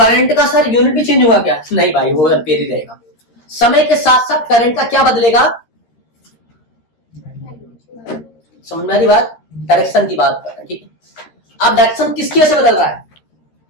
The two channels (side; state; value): right; late; 13 ms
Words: का सर यूनिट भी चेंज होगा क्या? नहीं भाई, वो एम्पियर ही रहेगा। समय के साथ साथ करंट का क्या बदलेगा? समझ में आ रही बात? डायरेक्शन की बात कर रहे हैं, ठीक है। अब डायरेक्शन किसकी वजह से बदल रहा है?